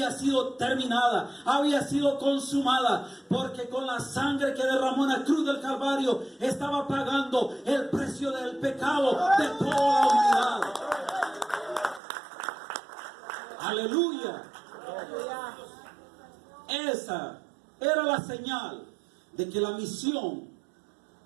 sido terminada, había sido consumada, porque con la sangre que derramó en la cruz del Calvario estaba pagando el precio del pecado de toda la humanidad. Aleluya. Esa era la señal de que la misión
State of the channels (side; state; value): left; drops out; at 12.0 s